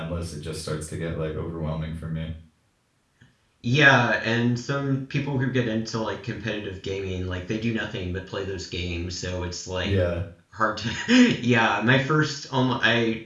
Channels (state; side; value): identical; both; correlation 1.00